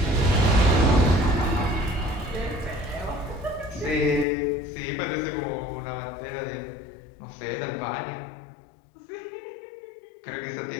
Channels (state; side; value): drops out; right; at 4.2 s